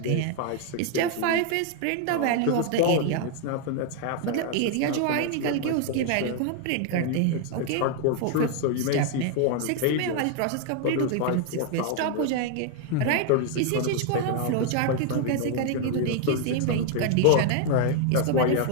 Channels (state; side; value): different; both; correlation 0.00